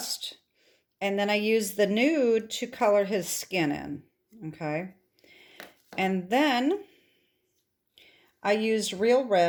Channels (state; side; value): identical; both; correlation 1.00